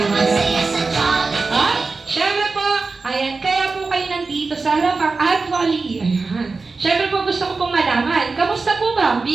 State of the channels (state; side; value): quieter; left; 4.1 dB